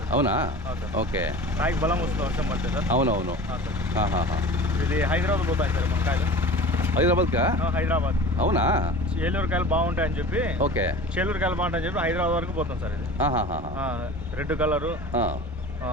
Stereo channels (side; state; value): both; normal; correlation 0.38